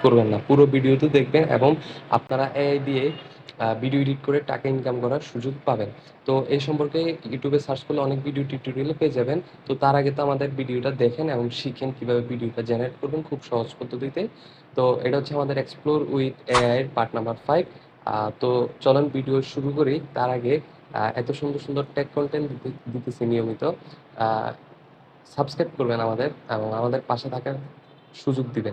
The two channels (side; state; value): both; identical; correlation 1.00